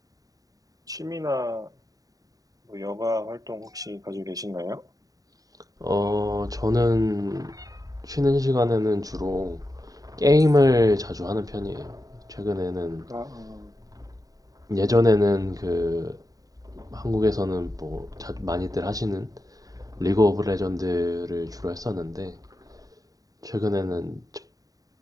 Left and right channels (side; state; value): left; late; 0.18 ms